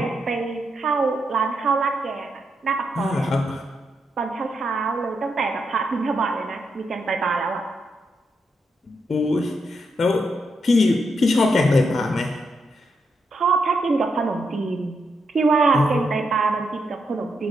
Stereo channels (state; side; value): normal; both; correlation 0.82